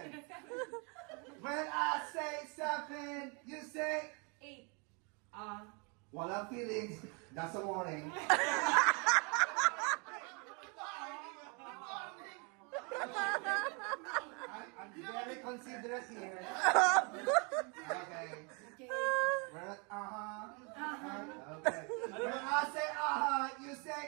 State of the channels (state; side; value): quieter; left; 33.4 dB